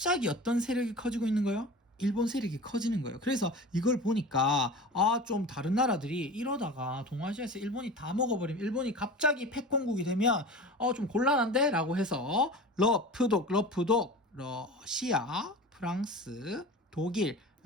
어떤 세력이 커지고 있는 거예요? 일본 세력이 커지는 거예요. 그래서 이걸 보니까 좀 다른 나라들이 이러다가 동아시아에서 일본이 다 먹어버리면, 일본이 갑자기 패권국이 되면 좀 곤란한데? 라고 해서 러프독, 러시아, 프랑스, 독일,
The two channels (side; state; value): both; normal; correlation 0.34